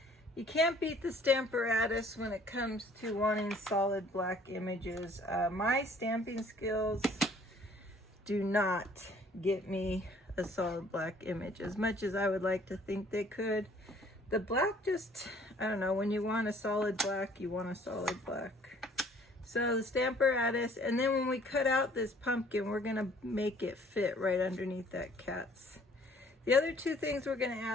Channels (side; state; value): both; normal; correlation 0.57